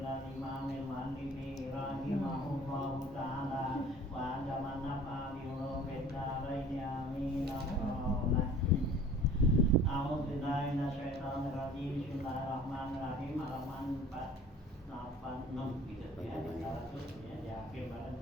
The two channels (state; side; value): normal; both; correlation 0.47